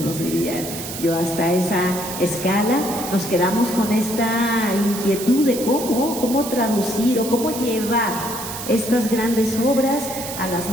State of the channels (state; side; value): noise; right; hiss, 8 dB below the sound